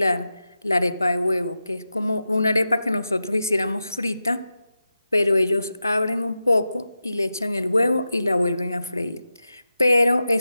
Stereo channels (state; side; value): inverted; both; correlation -0.91